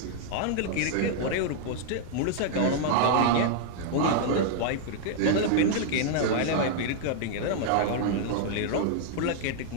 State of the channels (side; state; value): both; different; correlation -0.01